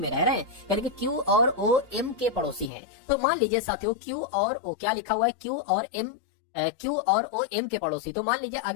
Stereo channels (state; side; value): drops out; right; at 2.7 s